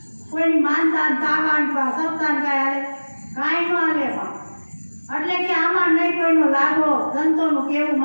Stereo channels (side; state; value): both; inverted; correlation -1.00